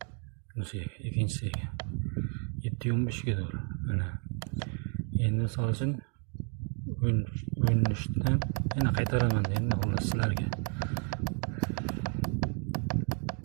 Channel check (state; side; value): quieter; left; 39.7 dB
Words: Bunisiga ikkinchisiga. 7:15 ga doğru. Mana. Endi misol uchun 13 dan yana qaytaraman endi xullas sizlarga.